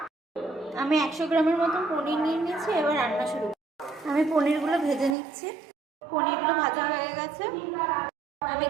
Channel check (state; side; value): drops out; left; at 5.2 s